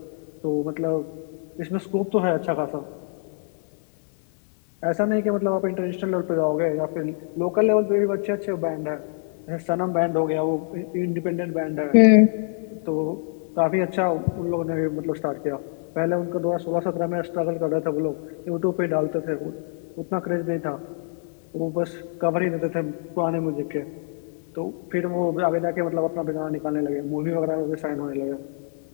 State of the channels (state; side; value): silent; right; digital silence